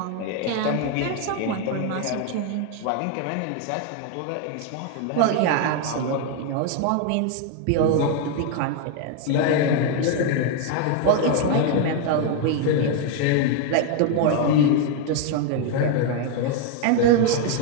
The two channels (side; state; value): both; different; correlation 0.01